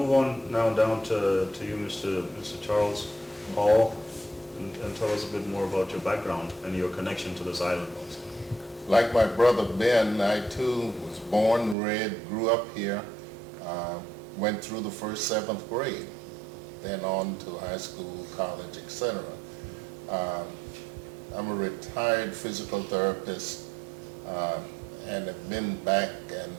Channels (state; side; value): drops out; left; at 11.8 s